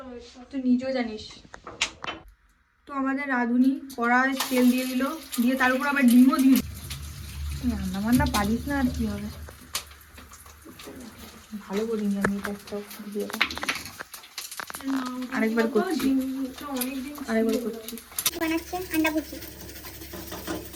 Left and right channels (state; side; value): identical; both; correlation 1.00